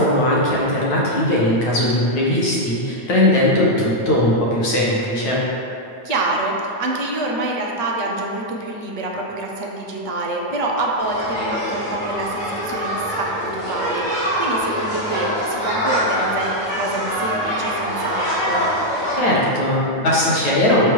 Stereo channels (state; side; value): late; right; 9.2 ms